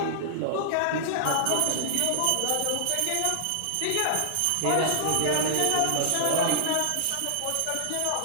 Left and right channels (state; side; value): different; both; correlation -0.01